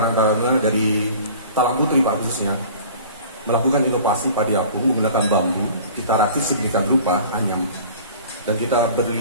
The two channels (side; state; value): both; inverted; correlation -0.45